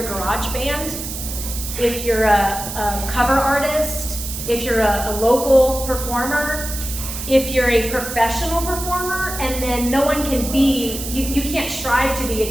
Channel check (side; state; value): right; noise; hiss, 7 dB below the sound